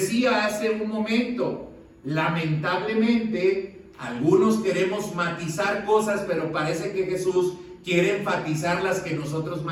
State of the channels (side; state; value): both; identical; correlation 1.00